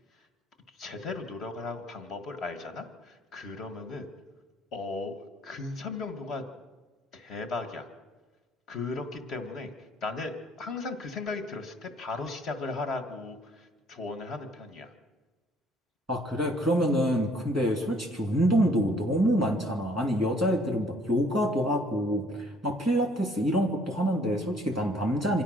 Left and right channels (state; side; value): normal; both; correlation 0.60